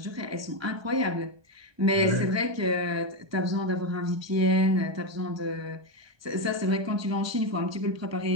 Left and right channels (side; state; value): left; late; 1.2 ms